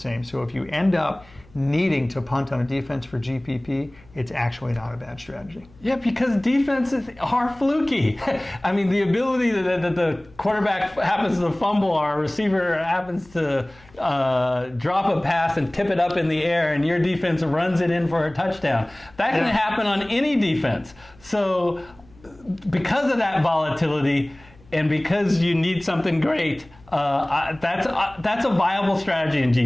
So if you end up needing to punt on a defense for GPP, it's actually not a bad strategy. Yeah, because defenses are fluky. I mean, the ability that the quarterback happens to fumble or a receiver happens to drop a pass and tip it up in the air and your defense runs it in for a touchdown. That can happen on any defense. So because of that volatility and because you need something great, that's a viable stratery in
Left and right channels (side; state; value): left; noise; hum, 27 dB below the sound